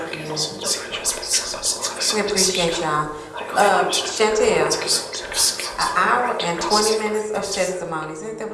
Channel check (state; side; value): identical; both; correlation 1.00